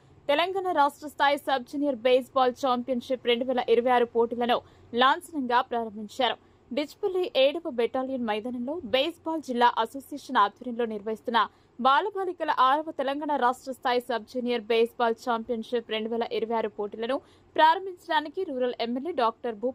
తెలంగాణ రాష్ట్ర స్థాయి సబ్ జూనియర్ బేస్బాల్ ఛాంపియన్షిప్ 2026 పోటీలను లాంఛనంగా ప్రారంభించారు. డిచ్పల్లి 7వ బెటాలియన్ మైదానంలో బేస్బాల్ జిల్లా అసోసియేషన్ ఆధ్వర్యంలో నిర్వహిస్తున్న బాలబాలికల 6వ తెలంగాణ రాష్ట్ర స్థాయి సబ్ జూనియర్ బేస్బాల్ ఛాంపియన్షిప్ 2026 పోటీలను ప్రారంభించడానికి rural MLA doctor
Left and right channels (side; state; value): both; identical; correlation 1.00